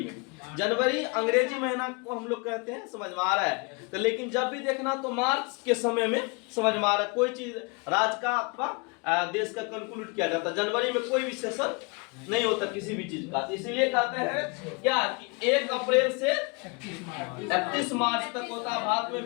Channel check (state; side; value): quieter; right; 30.4 dB